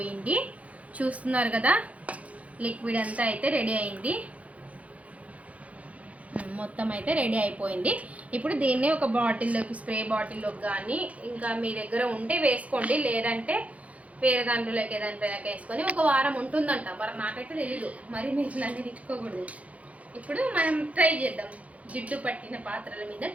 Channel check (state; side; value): late; left; 0.066 ms